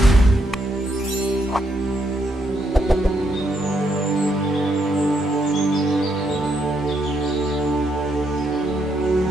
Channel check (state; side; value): normal; both; correlation 0.77